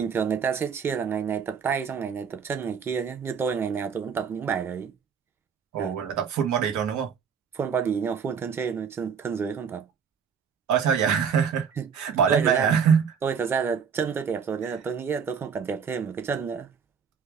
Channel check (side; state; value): left; quieter; 6.8 dB